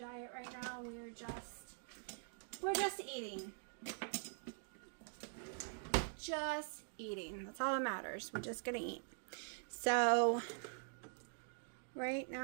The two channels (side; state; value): left; silent; digital silence